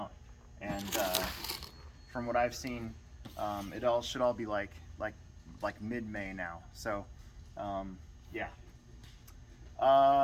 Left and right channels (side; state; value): both; identical; correlation 1.00